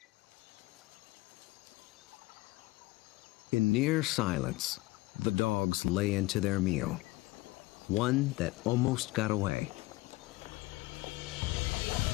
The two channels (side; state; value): right; quieter; 20.7 dB